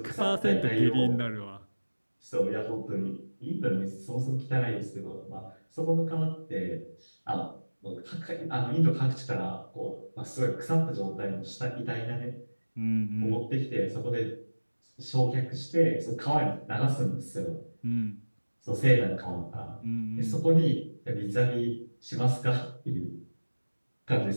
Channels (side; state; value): both; inverted; correlation -1.00